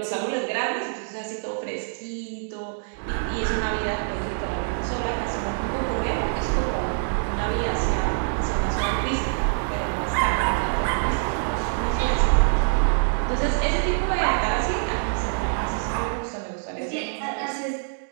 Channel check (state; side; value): silent; left; digital silence